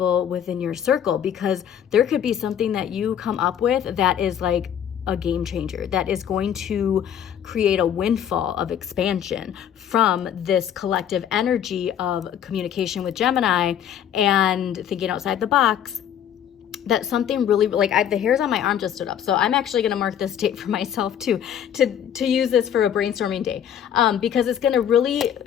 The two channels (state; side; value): quieter; right; 9.5 dB